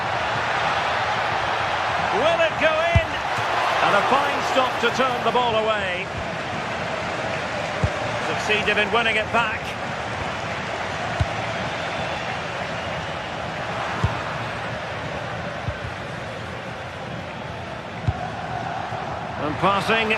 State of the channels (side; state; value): both; identical; correlation 1.00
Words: Will it go in? And a fine stop to turn the ball away. Succeeded in winning it back. And passing